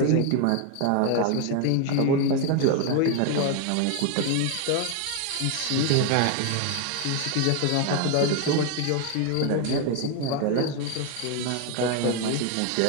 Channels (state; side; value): different; both; correlation 0.00